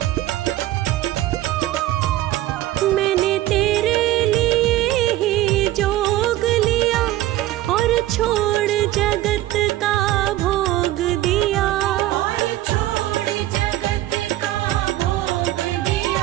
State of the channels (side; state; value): left; quieter; 15.2 dB